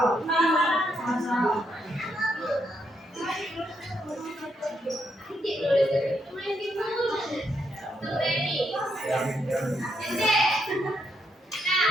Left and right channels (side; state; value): both; normal; correlation 0.78